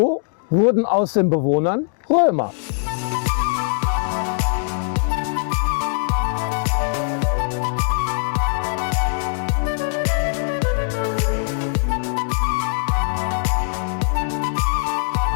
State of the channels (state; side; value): silent; right; digital silence